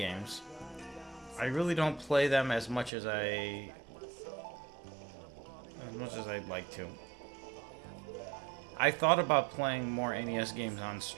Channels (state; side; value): drops out; left; at 2.9 s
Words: I really don't play them as much as I'd like to. I thought about playing more NES games on